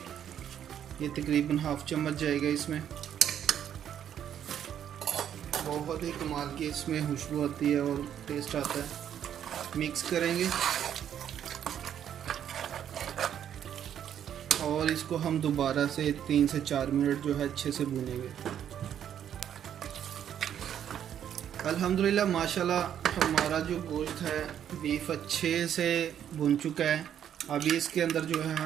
ये तकरीबन हाफ चम्मच जाएगा इसमें। बहुत ही कमाल की इसमें खुशबू आती है और टेस्ट आता है। मिक्स करेंगे और इसको हम दोबारा से 3 से 4 मिनट जो है अच्छे से भूनेंगे। अल्हम्दुलिल्लाह माशाल्लाह हमारा जो गोश्त है बीफ अच्छे से भुन चुका है। अभी इसके अंदर जो है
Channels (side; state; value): left; quieter; 9.6 dB